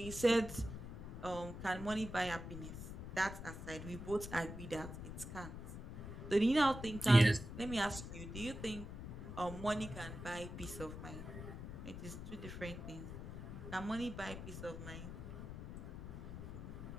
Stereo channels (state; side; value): noise; left; rumble, 9 dB below the sound